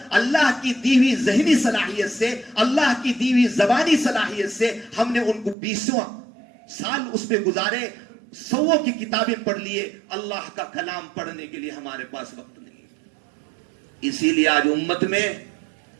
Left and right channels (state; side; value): drops out; left; at 5.6 s